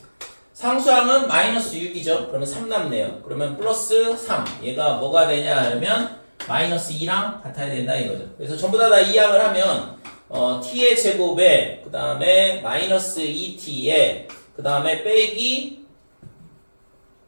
상수항은 마이너스 6이죠. 그러면 3 남네요. 그러면 플러스 3. 얘가 뭐가 되냐 하면 마이너스 2랑 같아야 된다 이거죠. 그래서 전부 다 이항을 하면 t의 제곱에 그 다음에 마이너스 2t에 그 다음에 빼기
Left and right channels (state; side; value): inverted; both; correlation -1.00